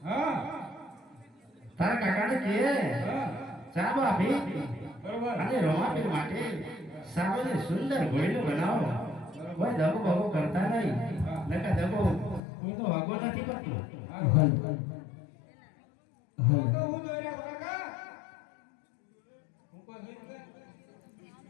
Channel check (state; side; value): drops out; right; at 12.4 s